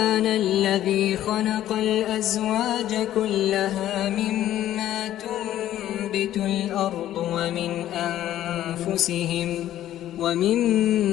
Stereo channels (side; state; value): right; quieter; 12.6 dB